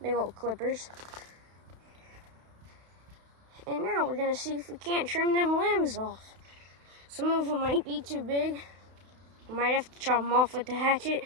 big old clippers. And now we're gonna see if we can't trim them limbs off. Some of them might be too big. I might have to chop them off with the hatchet,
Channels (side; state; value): left; late; 32 ms